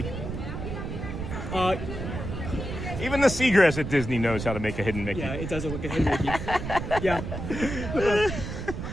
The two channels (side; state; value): right; noise; rumble, 6 dB below the sound